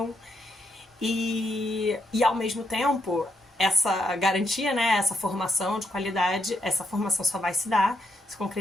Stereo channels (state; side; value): normal; both; correlation 0.79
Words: e ao mesmo tempo essa garantia, né, essa formação de qualidade, essa formação só vai se